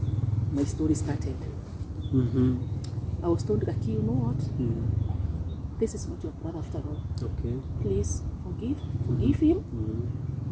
started. I was told, Gakii, you know what? This is not your brother after all. Okay. Please forgive him.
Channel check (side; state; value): both; identical; correlation 1.00